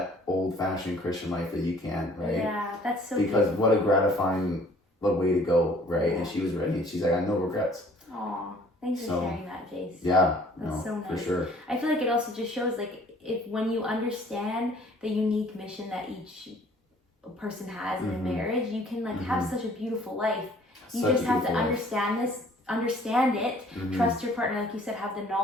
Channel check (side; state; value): both; normal; correlation 0.56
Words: old-fashioned Christian life that you can, right? Yeah, that's so because beautiful. what a gratifying way to go, right? And she was ready, and she's like, I have no regrets. Aw, thanks for sharing that, Jace. Yeah, that's so nice. For sure. I feel like it also just shows, like, when you understand the unique mission that each person has in a marriage, you can, like, have such a beautiful life. You just have to understand it, trust your partner, like you said, have the